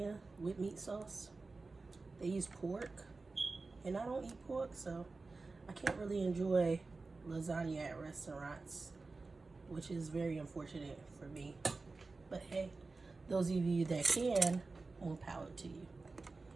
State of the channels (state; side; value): quieter; left; 3.8 dB